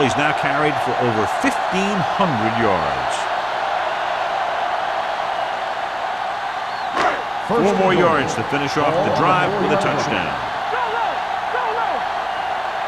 He's now carried for over 1,500 yards. 4 more yards to finish off the drive with a touchdown.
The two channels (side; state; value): both; identical; correlation 1.00